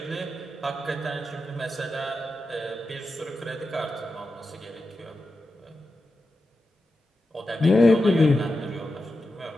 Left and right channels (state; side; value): normal; both; correlation 0.90